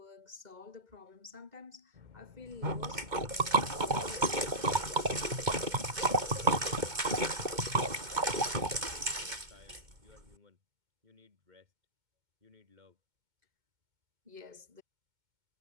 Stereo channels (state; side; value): late; left; 2.2 ms